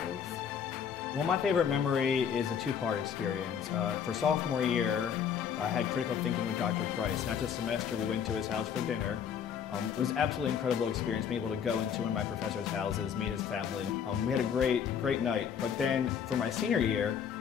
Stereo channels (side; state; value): right; quieter; 7.8 dB